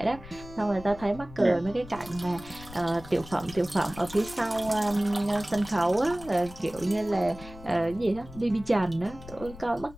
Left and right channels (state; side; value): noise; left; rumble, 16 dB below the sound